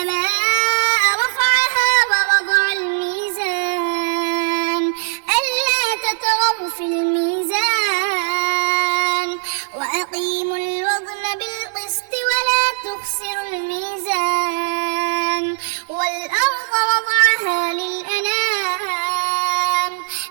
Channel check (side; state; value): left; silent; digital silence